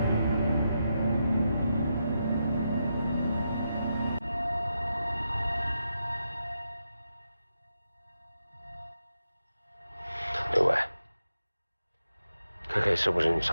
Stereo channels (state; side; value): inverted; both; correlation -0.85